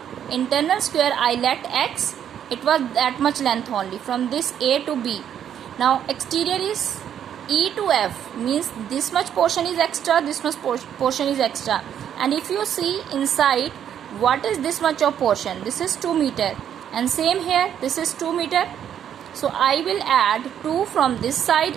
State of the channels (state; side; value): quieter; left; 9.4 dB